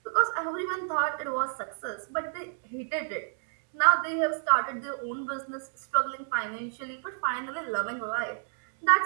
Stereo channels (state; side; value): silent; left; digital silence